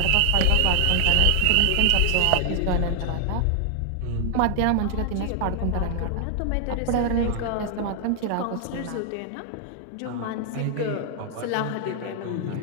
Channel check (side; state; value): both; different; correlation 0.00